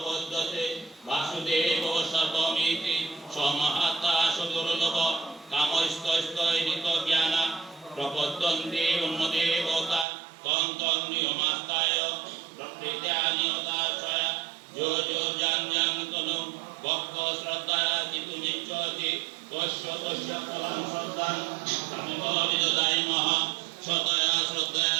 বাসুদেব সর্বমিতি সমহাত্মা সুদুর্লভ কামস্তৈনিত জ্ঞান প্রপদ্যন্তে অন্যদেবতা তং তং নিয়মাস্তায় প্রকৃত্যানিয়তাশ্রয়া যো যো জাং তনু ভক্ত শ্রদ্ধা জিতু নিচ্ছতি তস্য তস্য ফলং শ্রদ্ধাং সামিব বিদদায় মহা সতয়া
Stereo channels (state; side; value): drops out; left; at 10.1 s